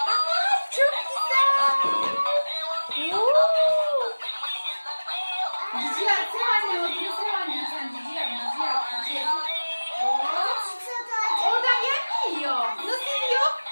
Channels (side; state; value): both; inverted; correlation -1.00